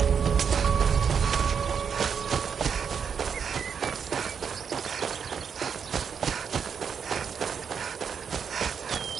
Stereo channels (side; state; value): left; quieter; 6.8 dB